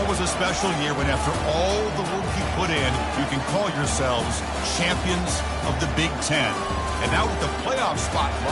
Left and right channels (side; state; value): both; identical; correlation 1.00